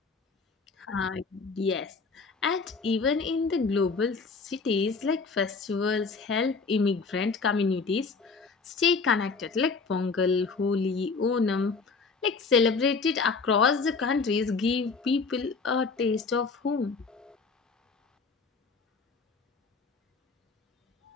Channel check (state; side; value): quieter; right; 4.6 dB